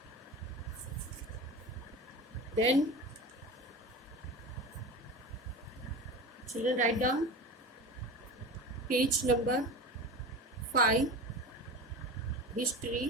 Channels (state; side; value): normal; both; correlation 0.30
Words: Then children write down page number 5,